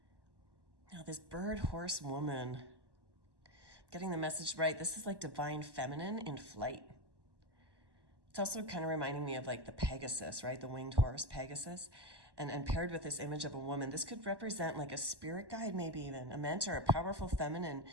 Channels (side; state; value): left; late; 1.1 ms